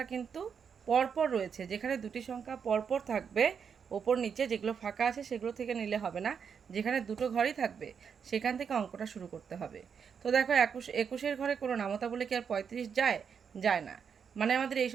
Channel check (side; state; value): left; quieter; 6.8 dB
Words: কিন্তু পরপর রয়েছে, যেখানে দুটি সংখ্যা পরপর থাকবে ওপর নিচে, যেগুলো ফাঁকা আছে সেগুলো থেকে নিলে হবে না, যেখানে দুটো ঘরই থাকবে সেখান থেকে অঙ্কটা শুরু করতে হবে। তো দেখো 21-এর ঘরে কোনো নামতা বলে কি আর 35 যায়? যায় না। মানে আমাদের এই